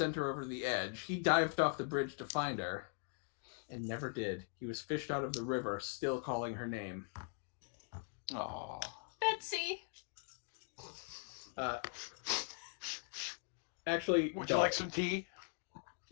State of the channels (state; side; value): silent; right; 51 dB below the other